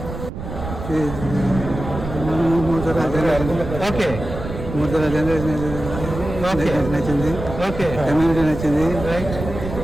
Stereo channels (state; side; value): noise; right; rumble, 8 dB below the sound